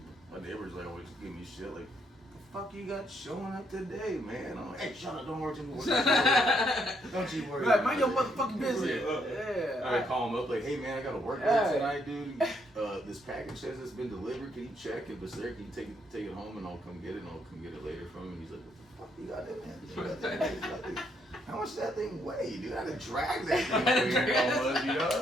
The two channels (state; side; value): normal; both; correlation 0.73